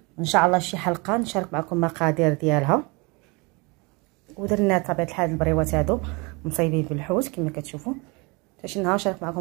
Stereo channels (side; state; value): left; quieter; 28.1 dB